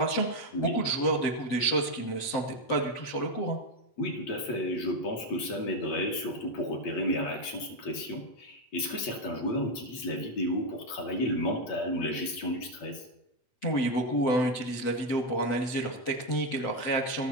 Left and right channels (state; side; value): late; right; 8.4 ms